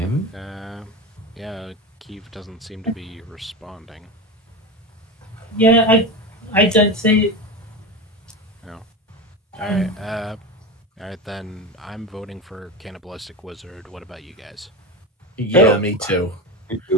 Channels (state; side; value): normal; both; correlation 0.23